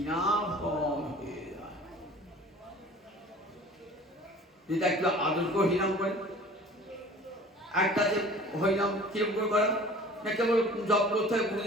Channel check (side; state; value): both; normal; correlation 0.46